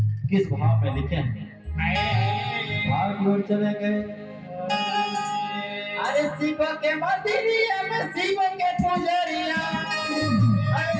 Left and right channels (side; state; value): both; identical; correlation 1.00